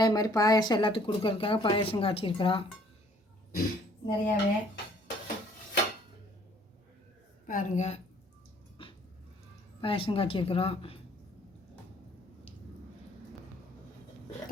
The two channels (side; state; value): both; normal; correlation 0.59